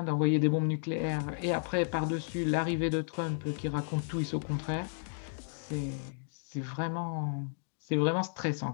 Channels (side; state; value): right; silent; digital silence